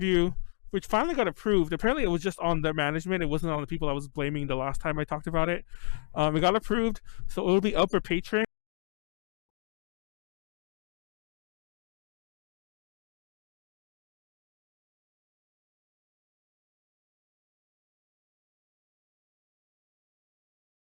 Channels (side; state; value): right; silent; digital silence